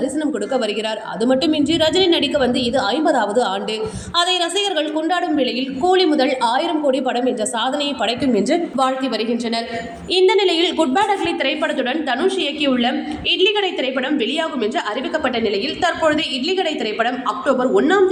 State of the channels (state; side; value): identical; both; correlation 1.00